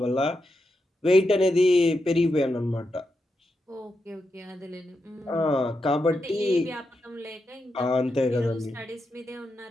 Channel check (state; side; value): normal; both; correlation 0.86